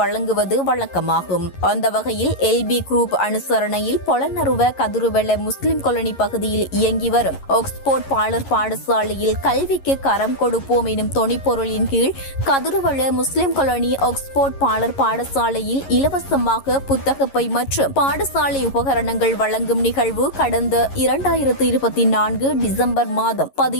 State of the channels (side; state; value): right; late; 11 ms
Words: வழங்குவது வழக்கமாகும். அந்த வகையில் எல்பி குரூப் அனுசரணையில் பொலனறுவ கதிருவெள முஸ்லிம் காலனி பகுதியில் இயங்கி வரும் ஆக்ஸ்போர்ட் பாலர் பாடசாலையில் கல்விக்கு கரம் கொடுப்போம் எனும் தொனிப்பொருளின் கீழ் கதிருவெள முஸ்லிம் காலனி ஆக்ஸ்போர்ட் பாலர் பாடசாலையில் இலவசமாக புத்தகப்பை மற்றும் பாடசாலை உபகரணங்கள் வழங்கும் நிகழ்வு கடந்த 2024 டிசம்பர் மாதம்